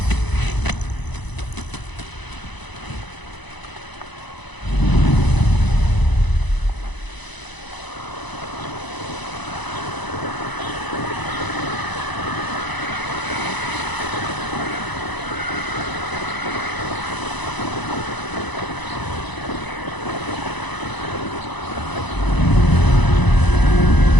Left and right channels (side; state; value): right; late; 1.0 ms